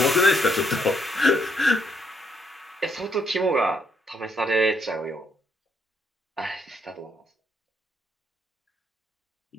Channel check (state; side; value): normal; both; correlation 0.73